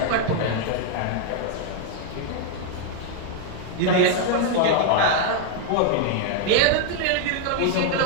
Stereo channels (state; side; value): different; both; correlation 0.00